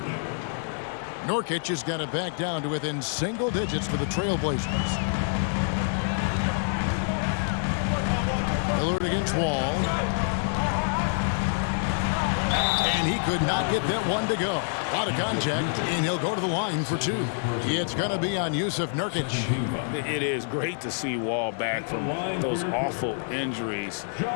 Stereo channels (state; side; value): silent; right; digital silence